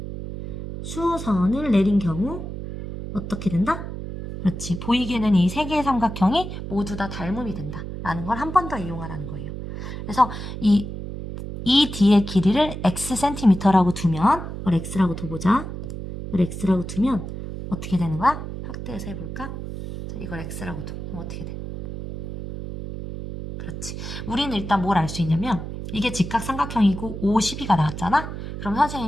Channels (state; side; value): noise; right; hum, 8 dB below the sound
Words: 수선을 내린 경우 어떻게 된다? 그렇지. 보이게는 이 세 개의 삼각형이 모두 다 닮음이 된다. 라는 걸 한 번 더 이용하라는 거예요. 그래서 이 뒤의 길이를 xcm라고 두면, 이걸 x라고 둬보자. 이걸 x라고 두면 어떻게 되는 거야? 확대해서 해볼까? 자, 이걸 x라고 둬. 그럼 어떻게 돼? 그렇지. 우리는 일단 뭘 알 수 있냐면 이게 직각 삼각형이고 5, 12가 나왔잖아? 그럼